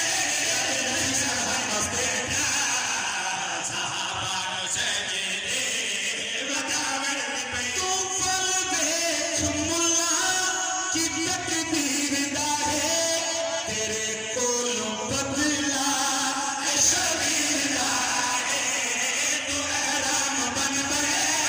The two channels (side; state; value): both; identical; correlation 1.00